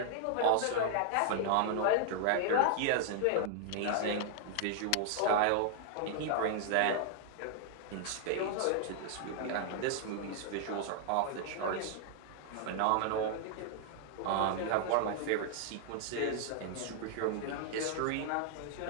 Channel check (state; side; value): different; both; correlation 0.00